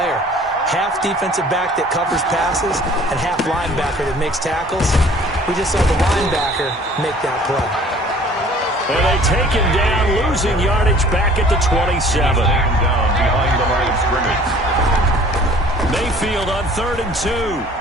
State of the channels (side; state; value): both; normal; correlation 0.51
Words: Half defensive back that covers passes and half linebacker that makes tackles. We just saw the linebacker make that play. And they take him down, losing yardage back at the 27. Down behind the line of scrimmage. Mayfield on 3rd and